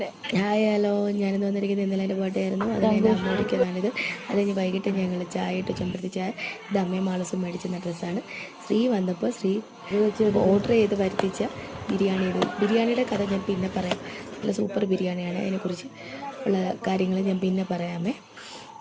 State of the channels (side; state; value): both; identical; correlation 1.00